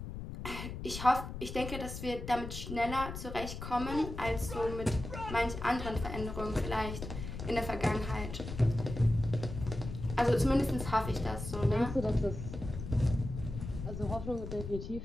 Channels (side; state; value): left; noise; rumble, 8 dB below the sound